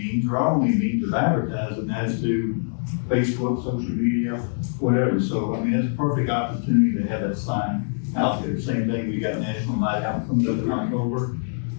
of advertising that is through Facebook, social media, whatever. So, I mean, it's a perfect opportunity to have that sign out there. Same thing, we got National Night Out coming up in October.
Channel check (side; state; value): right; silent; digital silence